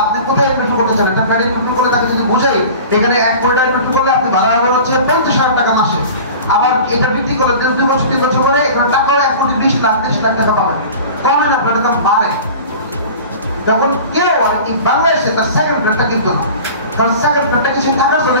আপনি কোথায় ইনভেস্ট করতে চান, একটা ফ্ল্যাট ইনভেস্ট করে তাকে যদি বোঝাই এখানে 1 কোটি টাকা ইনভেস্ট করলে আপনি ভাড়া হবে হচ্ছে 50,000 টাকা মাসে, আবার এটা বৃদ্ধি করলে 2 বছর 3 বছর পরে এখানে টাকাও 1 কোটি 20 লাখ 30 লাখ টাকা পাবেন, কমে না, আপনার দাম বাড়ে। তখন কেউ আর কি বাংলাদেশে তার সেকেন্ড ফ্ল্যাটটা কিনতো না, কারণ সেকেন্ড ফ্ল্যাটটা কি সে থাকার জন্য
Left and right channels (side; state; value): both; inverted; correlation -0.39